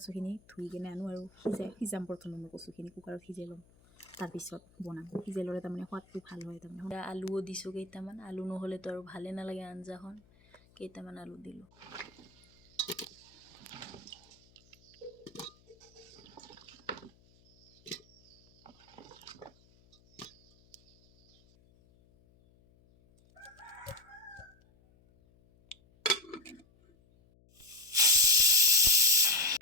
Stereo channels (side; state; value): left; noise; hum, 29 dB below the sound